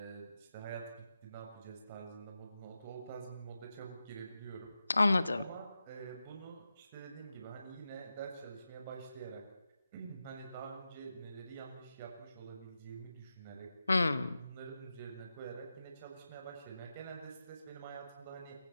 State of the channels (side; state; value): both; inverted; correlation -0.90